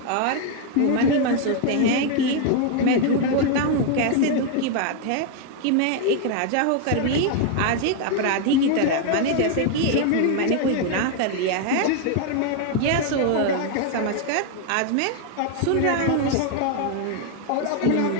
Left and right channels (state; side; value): different; both; correlation 0.00